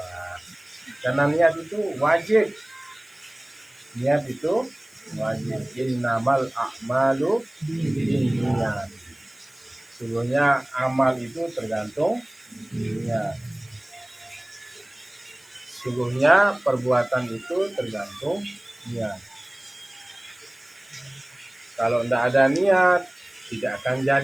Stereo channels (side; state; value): right; noise; hiss, 29 dB below the sound